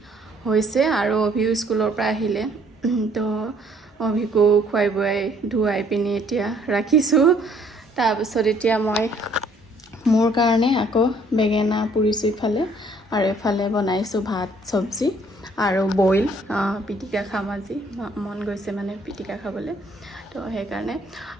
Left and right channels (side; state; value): both; normal; correlation 0.62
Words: হৈছে আৰু অভিও স্কুলৰ পৰা আহিলে তো অভিকো খুৱাই বুৱাই ধুৱাই পিনে এতিয়া ৰাখিছো তাৰপিছত এতিয়া মই মোৰ কাৰণে আকৌ বেঙেনা পুৰিছো ইফালে আৰু এফালে বনাইছো ভাত সবজি আৰু বইল পিটিকা খাম আজি মন গৈছে মানে পিটিকা খাবলৈ তো সেইকাৰণে